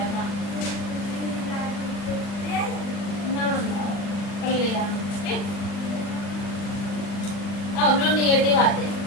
था ना कर लिया ठीक अब हम लोग निगेटिव आते हैं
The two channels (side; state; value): right; late; 40 ms